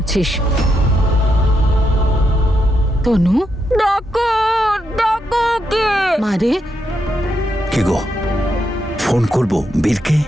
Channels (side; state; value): both; normal; correlation 0.81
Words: তনু, ডাকো ডাকো, কে? মারে, কি গো, ফোন করবো বীরকে?